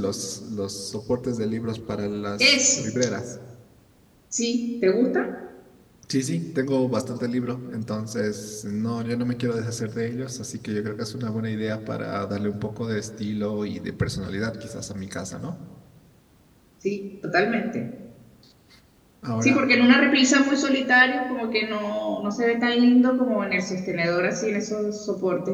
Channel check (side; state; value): both; identical; correlation 1.00